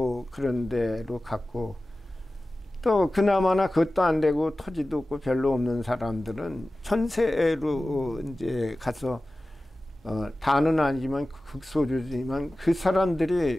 그런 데로 갔고 또 그나마나 그것도 안 되고 토지도 없고 별로 없는 사람들은 전세로 이제 가서 다는 아니지만 극소수지만 그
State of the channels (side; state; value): both; normal; correlation 0.96